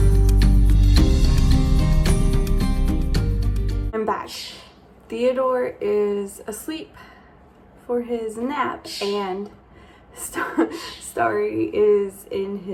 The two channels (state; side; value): identical; both; correlation 1.00